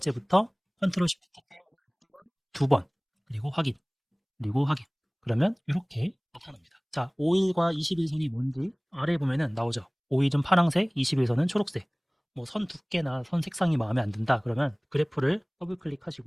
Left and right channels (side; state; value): both; identical; correlation 1.00